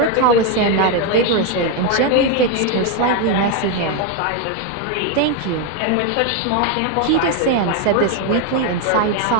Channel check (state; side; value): different; both; correlation 0.01